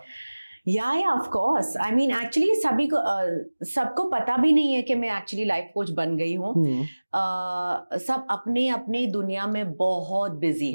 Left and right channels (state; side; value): inverted; both; correlation -1.00